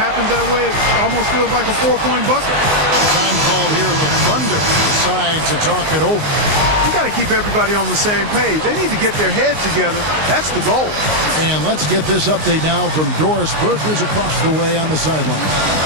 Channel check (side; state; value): left; late; 19 ms